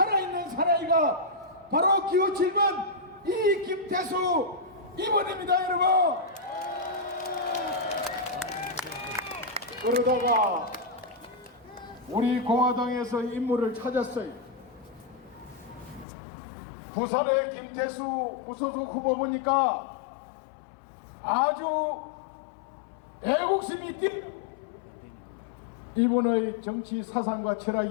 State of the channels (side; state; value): right; drops out; at 16.1 s